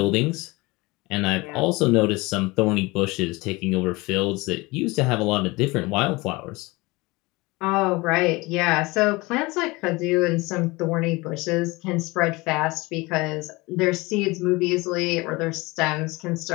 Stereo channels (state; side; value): quieter; right; 23.3 dB